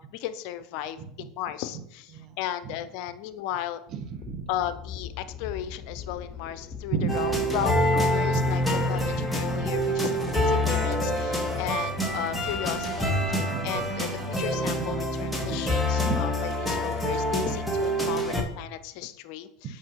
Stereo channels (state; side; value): normal; both; correlation 0.43